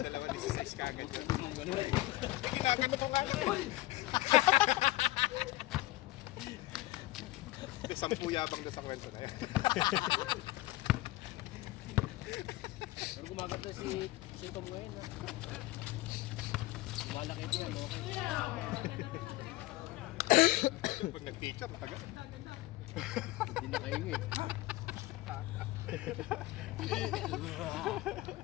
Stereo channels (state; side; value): quieter; right; 18.2 dB